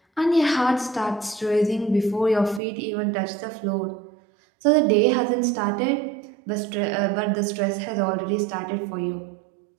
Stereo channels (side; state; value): left; drops out; at 2.6 s